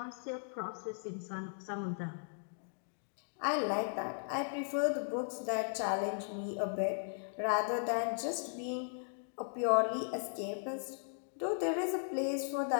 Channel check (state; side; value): silent; right; digital silence